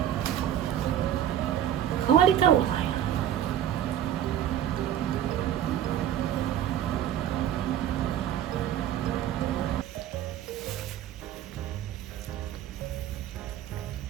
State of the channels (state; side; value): quieter; left; 10.7 dB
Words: 変わり太郎さんや。